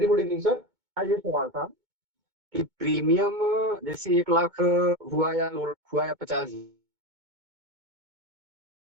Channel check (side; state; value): left; late; 2.2 ms